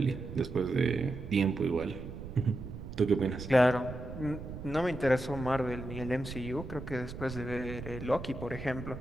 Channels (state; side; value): noise; right; rumble, 10 dB below the sound